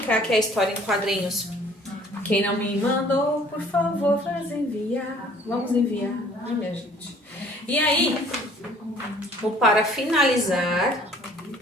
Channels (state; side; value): normal; both; correlation 0.55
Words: aqui é a história em quadrinhos. Quem não me mandou, por favor, faz enviar. Vamos enviar, né, minha gente? E aí, para finalizar,